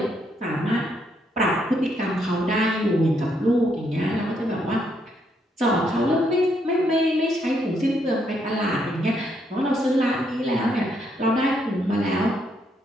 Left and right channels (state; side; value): normal; both; correlation 0.75